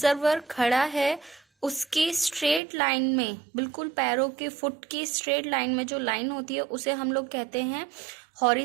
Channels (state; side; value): drops out; left; at 2.6 s